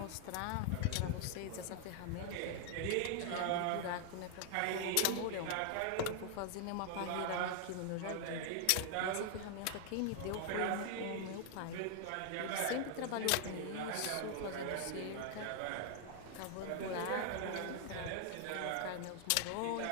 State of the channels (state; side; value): different; both; correlation 0.00